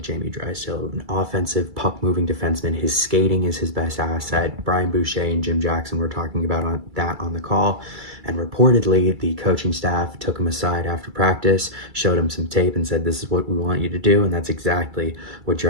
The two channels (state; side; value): late; left; 2.3 ms